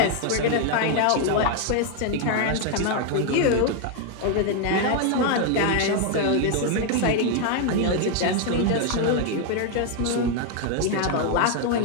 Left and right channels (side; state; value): both; different; correlation 0.00